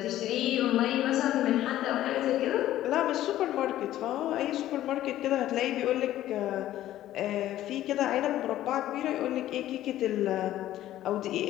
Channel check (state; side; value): quieter; right; 13.6 dB